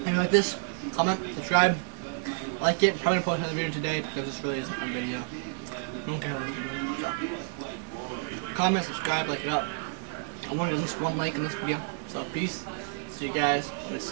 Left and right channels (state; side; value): silent; left; digital silence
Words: If you like this, comment, subscribe, like it. Probably gonna post another video today because this really isn't a video. I don't care what you do. So, comment, subscribe, like it up. I wanted at least one like in this video. So peace. See you guys. Let's